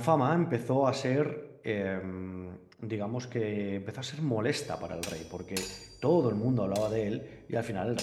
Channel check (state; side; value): identical; both; correlation 1.00